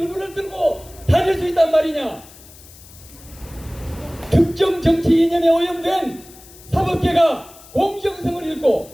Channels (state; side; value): noise; left; hiss, 21 dB below the sound